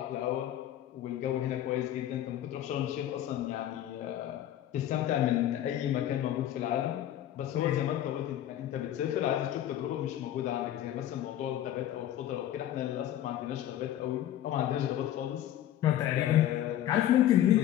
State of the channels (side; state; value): right; quieter; 12.1 dB